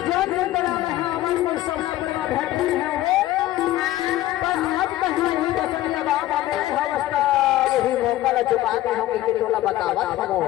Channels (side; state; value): right; quieter; 15.1 dB